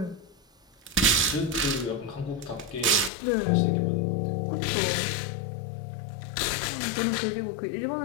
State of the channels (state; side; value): drops out; right; at 3.1 s